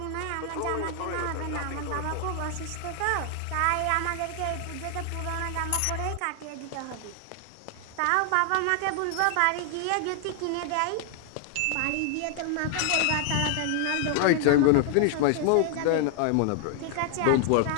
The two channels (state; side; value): different; both; correlation 0.00